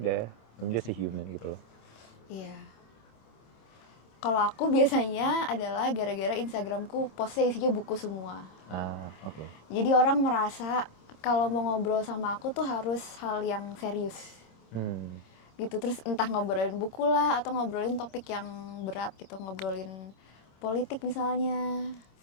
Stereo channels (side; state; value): right; late; 26 ms